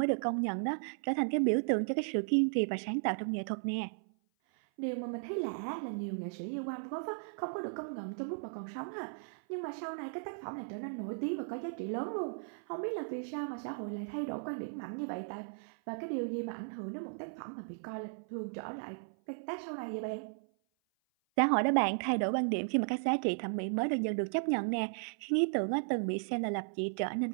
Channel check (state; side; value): silent; left; 54 dB below the other